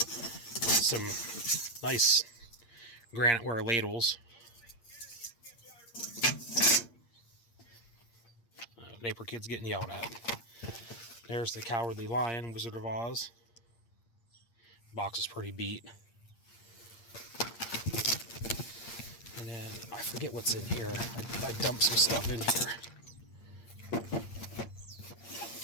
nice graniteware ladles. Neighbor kid's getting yelled at. There's the Cowardly Lion, Wizard of Oz. Box is pretty beat. And then I forget what's in here. I dumped some stuff in here.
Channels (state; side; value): late; right; 8.6 ms